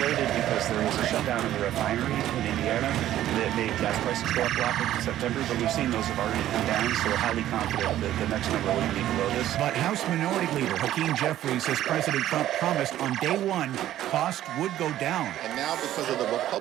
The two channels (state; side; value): quieter; left; 12.9 dB